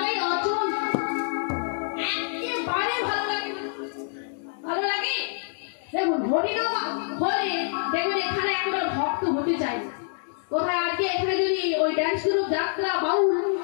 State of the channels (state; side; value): silent; right; digital silence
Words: অচল, একেবারে ভালো লাগে। ভালো লাগে দেখুন, হরিনাম হলে দেখবেন এখানে একেবারে ভক্ত হতে চাই। কোথায় আজকে এখানে যদি ওই ডান্স গ্রুপ, যাত্রা, বাউল,